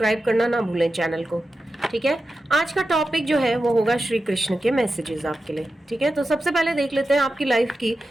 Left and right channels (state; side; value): normal; both; correlation 0.91